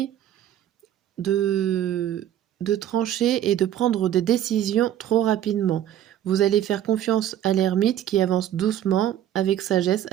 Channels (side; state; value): left; quieter; 11.3 dB